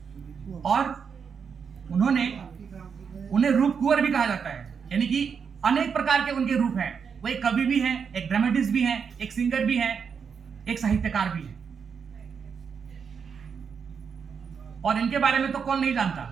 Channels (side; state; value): left; quieter; 6.4 dB